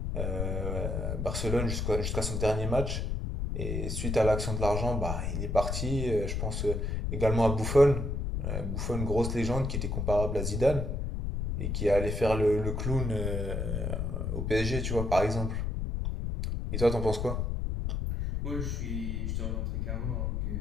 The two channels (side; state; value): left; noise; rumble, 1 dB below the sound